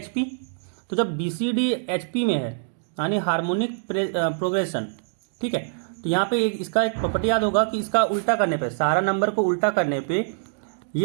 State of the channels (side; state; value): left; silent; digital silence